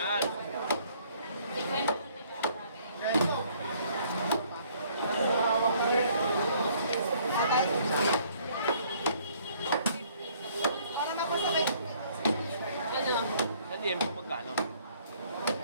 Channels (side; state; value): both; inverted; correlation -0.61